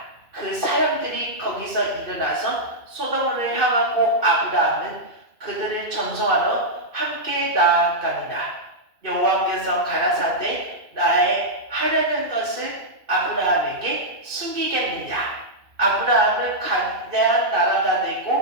그 사람들이 거기서 일어나서 소돔을 향하고 아브라함은 그들을 전송하러 함께 나아가니라. 여호와께서 가라사대 나의 하려는 것을 아브라함에게 숨기겠느냐? 아브라함은 거대한 나라가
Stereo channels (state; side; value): late; left; 2.5 ms